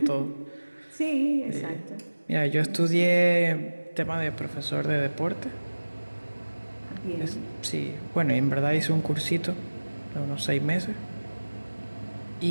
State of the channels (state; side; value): inverted; both; correlation -1.00